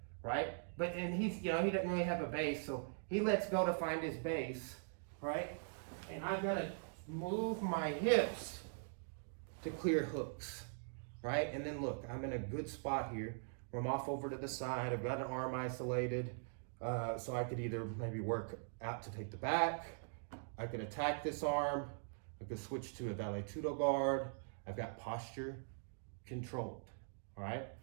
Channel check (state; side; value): silent; left; digital silence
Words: right? and he's, you know, he doesn't really have a base, so he lets go to find his base, right? And I'm gonna move my hips to clear hooks, right? And then look, I'm in a good spot here where I'm off over to the side. I've got an arm isolated, so I could either maybe work out to take the back, I could attack this arm, I could switch to a vale tudo guard. I've got posture controlled, all right?